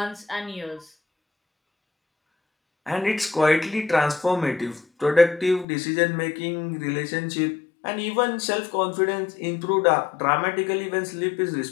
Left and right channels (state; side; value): drops out; right; at 5.7 s